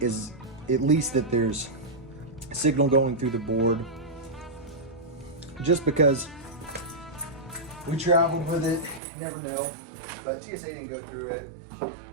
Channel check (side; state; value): left; drops out; at 9.0 s